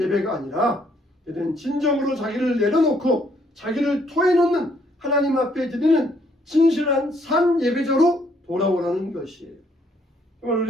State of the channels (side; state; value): both; normal; correlation 0.68